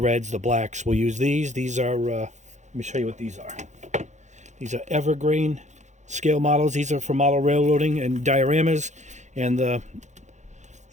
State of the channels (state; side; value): late; left; 0.34 ms